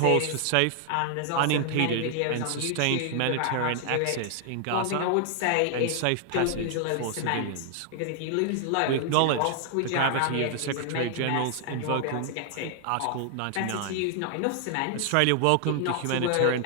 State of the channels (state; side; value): different; both; correlation 0.00